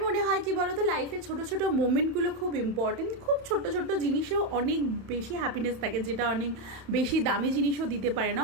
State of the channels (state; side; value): late; left; 31 ms